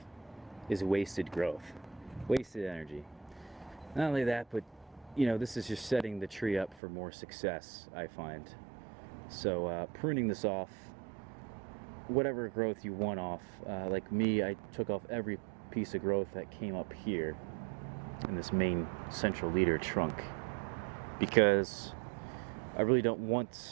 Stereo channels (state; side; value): drops out; left; at 6.8 s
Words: is wasted growth, wasted energy. Not only that, but you know, this is just setting the tree up for more success, I find. So pruning this off, whatever growth you want off, like me, I took off every piece of growth that came up here in this main central leader trunk, because I really don't